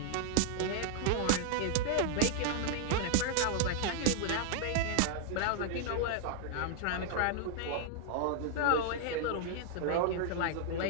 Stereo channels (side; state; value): both; different; correlation 0.00